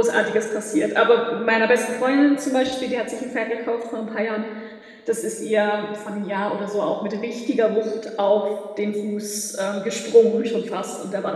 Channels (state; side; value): identical; both; correlation 1.00